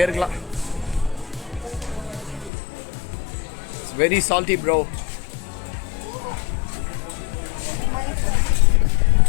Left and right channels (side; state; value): right; drops out; at 2.5 s